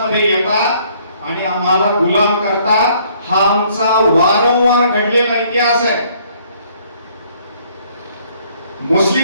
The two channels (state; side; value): inverted; both; correlation -0.63